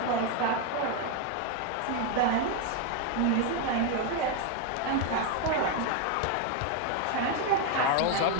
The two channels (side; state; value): both; different; correlation 0.01